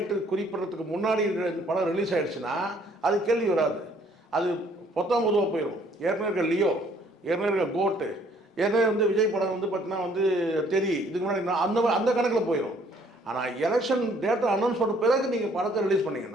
குறிப்பிட்றதுக்கு முன்னாடி இந்த படம் ரிலீஸ் ஆகிடுச்சுன்னா அது கேள்வி வராது, அது பொதுவாக போயிடும். ஏற்கனவே இருக்க லியோ, ஏற்கனவே இருக்க கோட்டு, ஏற்கனவே வந்து விஜய் படம் வந்து பார்த்தீங்கன்னா வந்து இதுக்கு முன்னாடி அந்த கணக்கில் போயிடும். ஆனால் எலெக்ஷன் டேட்டை அனௌன்ஸ் பண்ண பிறகு நீங்கள் படத்தை ரிலீஸ்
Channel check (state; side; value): normal; both; correlation 0.62